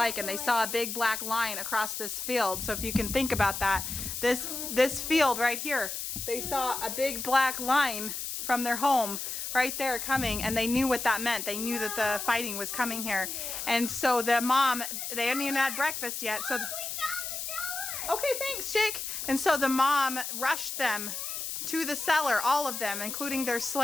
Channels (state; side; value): noise; left; hiss, 5 dB below the sound